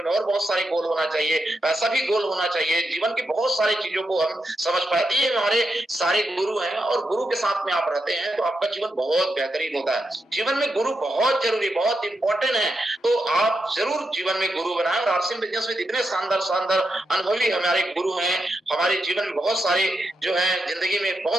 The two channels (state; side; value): normal; both; correlation 0.85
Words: में और बहुत सारे गोल होना चाहिए, पैसा भी गोल होना चाहिए। जीवन की बहुत सारी चीजों को हम समझ पाते हैं। ये हमारे सारे गुरु हैं, और गुरु के साथ में आप रहते हैं तो आपका जीवन बहुत बेहतरीन होता है। जीवन में गुरु बहुत जरूरी, बहुत इंपॉर्टेंट है। तो आप जरूर जीवन में गुरु बनाएं, और आरसी बिजनेस में इतने शानदार शानदार अनुभवी हमारे गुरु हैं, हमारे जीवन में बहुत सारे जो है जिंदगी में